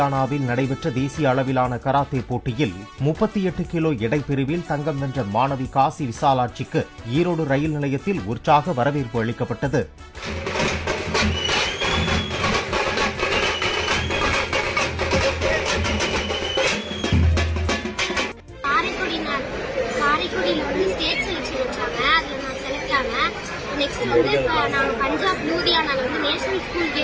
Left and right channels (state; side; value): identical; both; correlation 1.00